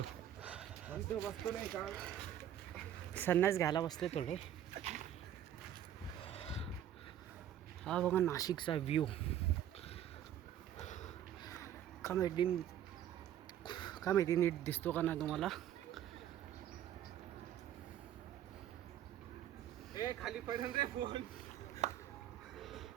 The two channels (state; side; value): quieter; left; 10.9 dB